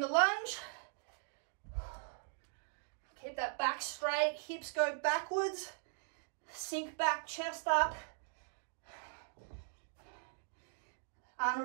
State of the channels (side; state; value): left; silent; digital silence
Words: lunge. Keep that back straight, hips go backwards, sink back, chest up.